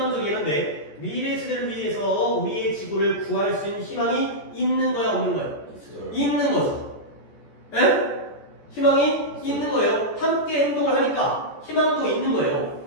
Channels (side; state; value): right; late; 14 ms